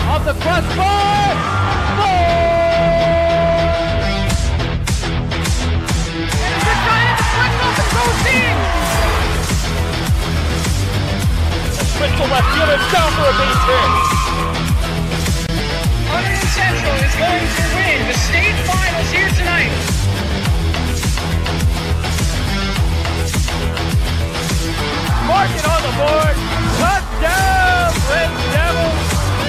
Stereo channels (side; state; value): both; identical; correlation 1.00